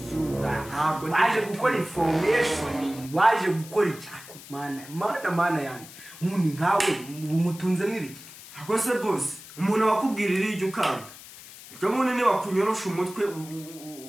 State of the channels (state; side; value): noise; left; hiss, 17 dB below the sound